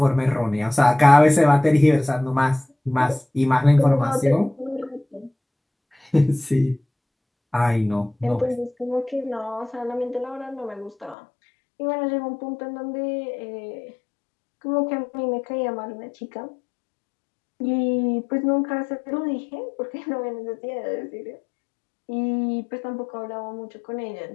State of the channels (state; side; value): drops out; right; at 11.2 s